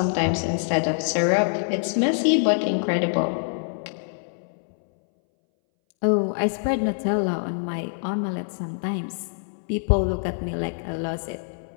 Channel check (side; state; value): right; silent; 61 dB below the other